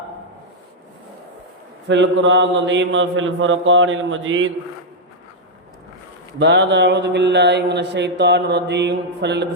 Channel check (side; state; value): both; normal; correlation -0.03